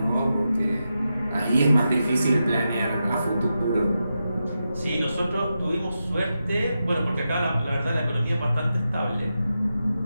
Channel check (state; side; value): inverted; both; correlation -0.89